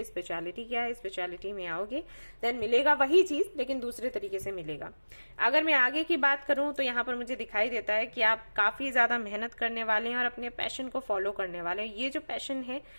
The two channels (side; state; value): both; inverted; correlation -1.00